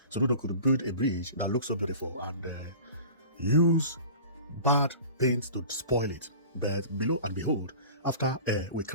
Soludo could build a bridge that looks so beautiful and use bad paint to spoil it. But below and behold, after we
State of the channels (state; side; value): inverted; both; correlation -0.40